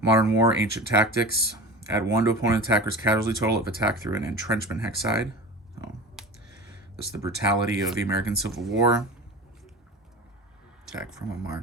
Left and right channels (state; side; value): normal; both; correlation 0.32